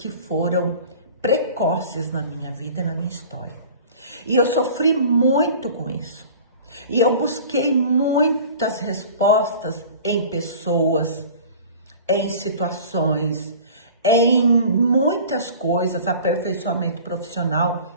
foram precoces na minha vida e na minha história. E eu sofri muito com isso. E eu busquei muitas respostas em pessoas, em situações, em muitas coisas, aperfeiçoamento profissional,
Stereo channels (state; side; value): inverted; both; correlation -0.42